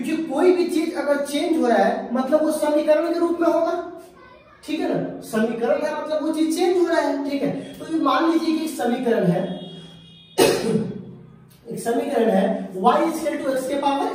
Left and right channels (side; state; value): both; identical; correlation 1.00